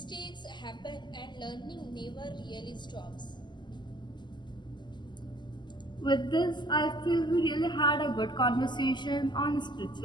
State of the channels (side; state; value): right; late; 0.21 ms